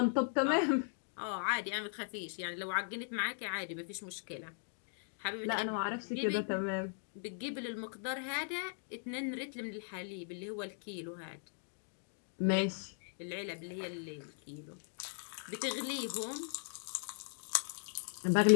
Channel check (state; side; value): silent; right; digital silence